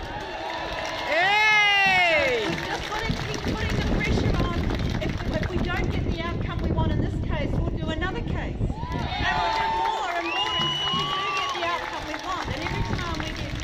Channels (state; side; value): identical; both; correlation 1.00